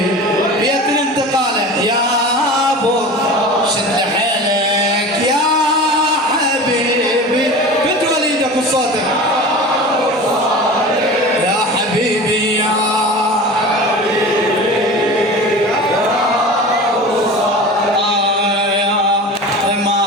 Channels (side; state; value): both; normal; correlation 0.34